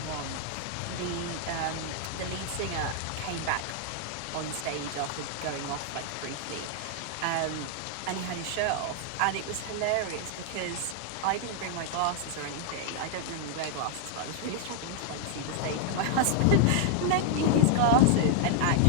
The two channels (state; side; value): different; both; correlation -0.01